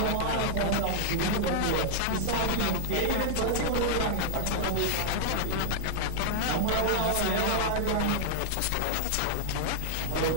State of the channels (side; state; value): both; different; correlation -0.01